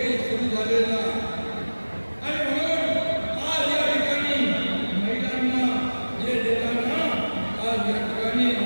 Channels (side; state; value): both; inverted; correlation -1.00